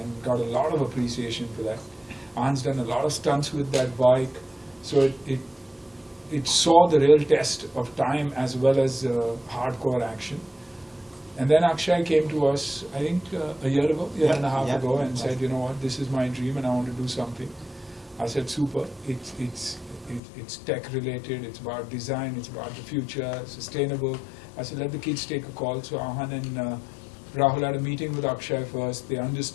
got a lot of appreciation for that. Ahan's done a lot of stunts with that bike, so it saw the real test of time as well as hardcore action. And then Akshay came to us, I think a year and a half ago, and said, you know what, this is my dream and I want to do something. I said, super, it's tech related, it's about design, it's about the future, sustainable. I said, let the kids take a call. So Ahan and Rahul had a meeting with Akshay first, they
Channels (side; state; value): right; drops out; at 20.2 s